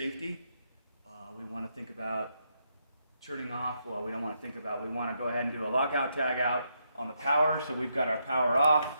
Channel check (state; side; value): inverted; both; correlation -0.79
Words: We want to think about turning off. Well, we don't want to think about. We want to go ahead and do a lockout tag out on the power. So we've got our power off.